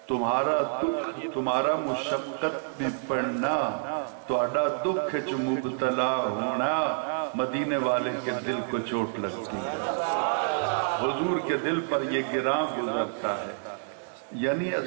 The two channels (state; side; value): silent; left; digital silence